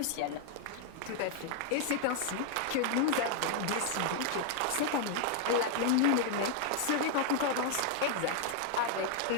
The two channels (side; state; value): both; different; correlation 0.00